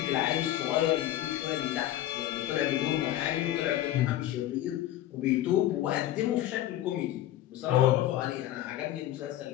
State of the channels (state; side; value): quieter; right; 13.6 dB